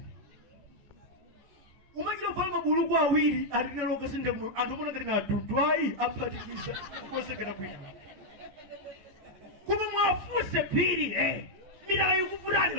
Umachira fala mabuluku awiri atinelo kasinde kuno andomona ngati ngadudwai aphatikiza kukozekera kwina. Kuma mwafuse phiri mitala ikuvutani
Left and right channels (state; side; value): late; left; 14 ms